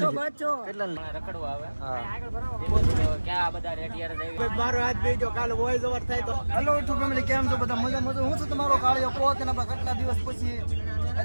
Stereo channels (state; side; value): inverted; both; correlation -1.00